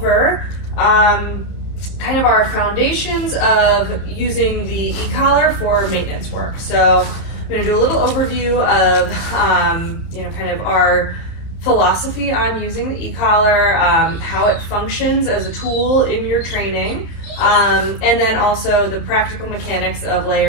kind of our foundations of using the e-collar for maintenance work. So I'm going to do a little overview of kind of our philosophy on using the e-collar, how it functions as a tool in your training, and then also the practical mechanics of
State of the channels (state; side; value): late; right; 30 ms